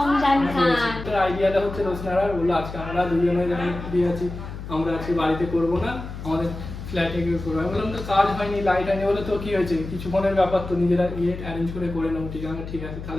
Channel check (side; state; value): left; noise; hum, 10 dB below the sound